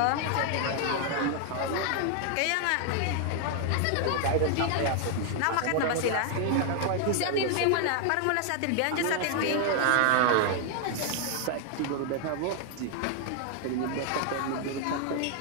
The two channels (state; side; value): different; both; correlation 0.00